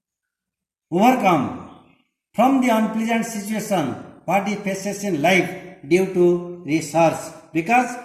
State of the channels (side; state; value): both; identical; correlation 1.00